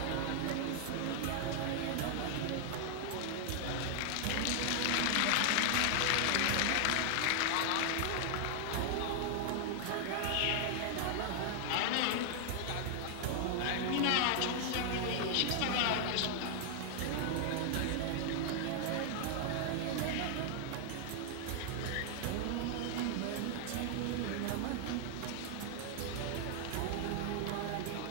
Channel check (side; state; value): both; different; correlation 0.00